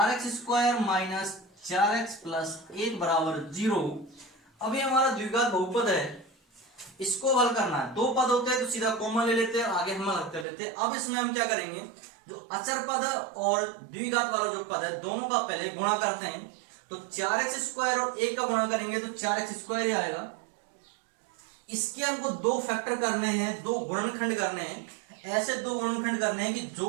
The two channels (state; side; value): drops out; left; at 10.5 s